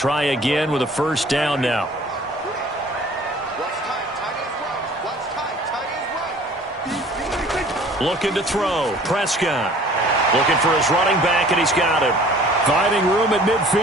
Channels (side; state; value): both; normal; correlation 0.50